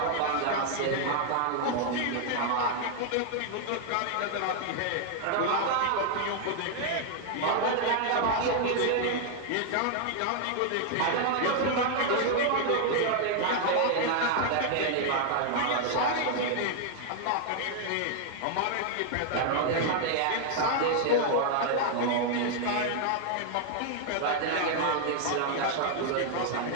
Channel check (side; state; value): both; different; correlation 0.00